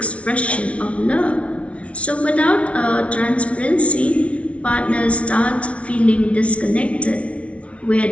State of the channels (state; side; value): late; right; 0.062 ms